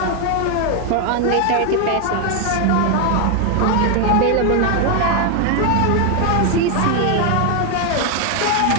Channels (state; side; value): different; both; correlation 0.01